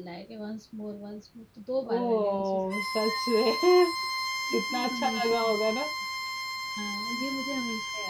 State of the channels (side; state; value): both; identical; correlation 1.00